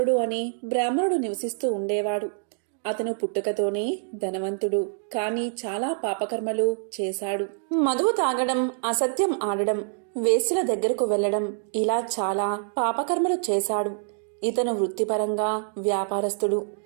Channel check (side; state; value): left; silent; digital silence